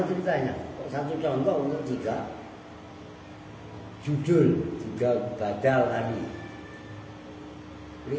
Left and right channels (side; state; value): both; identical; correlation 1.00